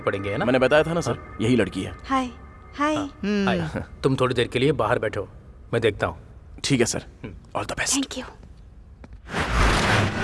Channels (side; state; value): both; identical; correlation 1.00